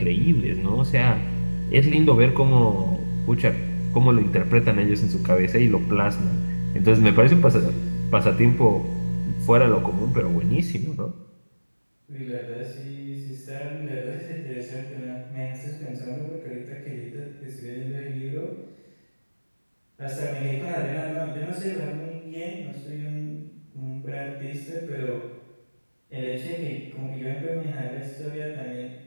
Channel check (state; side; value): inverted; both; correlation -1.00